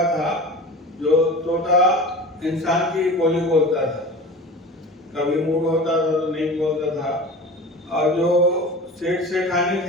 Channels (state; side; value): normal; both; correlation 0.35